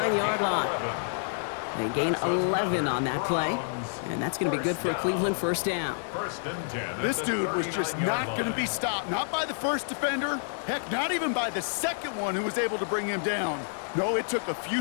line. They gain 11 on that play, and that's going to be good for a Cleveland first down. First and 10. This dude was just not going to be stopped, not by the first defender, heck, not even by the second one who was able to bring him down. No, it took a few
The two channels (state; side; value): silent; right; digital silence